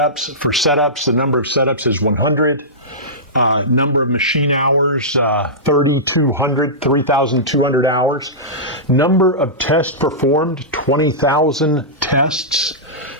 For setups, the number of setups is 100. Number of machine hours, 3,200 hours. Number of tests performed, 20,000 tests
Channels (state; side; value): normal; both; correlation -0.17